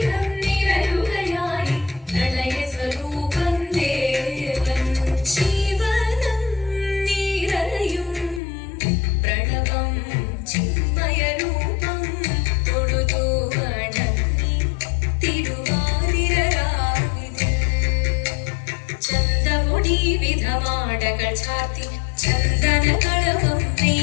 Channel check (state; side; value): drops out; right; at 8.4 s